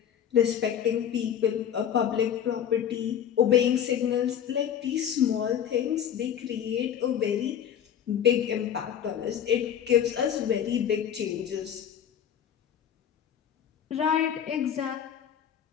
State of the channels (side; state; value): right; quieter; 9.2 dB